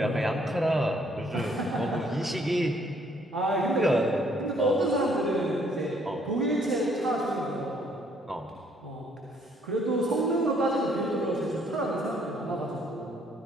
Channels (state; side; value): normal; both; correlation 0.65